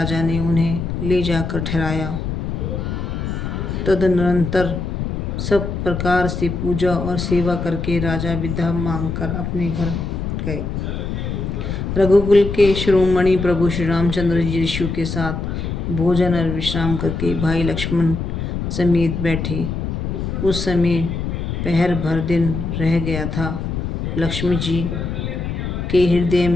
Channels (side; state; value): left; noise; rumble, 3 dB below the sound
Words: ने उन्हें ले जाकर ठहराया। तदनंतर सब प्रकार से पूजा और सेवा करके राजा विदा मांगकर अपने घर गए। रघुकुल के शिरोमणि प्रभु श्री रामचंद्र जी ऋषियों के साथ भोजन और विश्राम करके भाई लक्ष्मण समेत बैठे। उस समय पहर भर दिन रह गया था। लक्ष्मी जी के हृदय